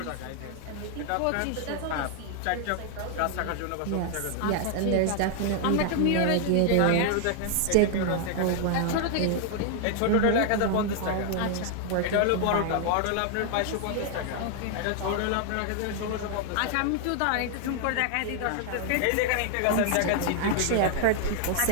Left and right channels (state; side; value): different; both; correlation 0.00